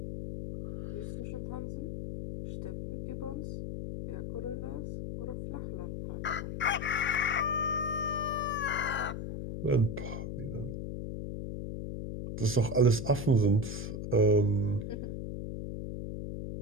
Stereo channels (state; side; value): noise; left; hum, 5 dB below the sound